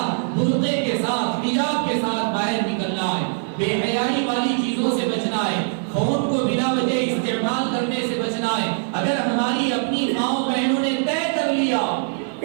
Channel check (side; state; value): left; silent; 58 dB below the other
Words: برقعے کے ساتھ, حجاب کے ساتھ باہر نکلنا ہے, بے حیائی والی چیزوں سے بچنا ہے, فون کو بلا وجہ استعمال کرنے سے بچنا ہے. اگر ہماری اپنی ماں بہنوں نے طے کر لیا,